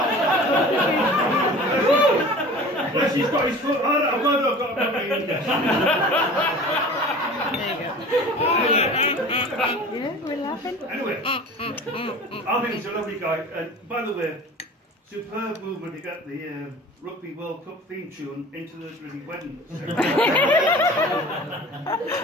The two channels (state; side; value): normal; both; correlation 0.41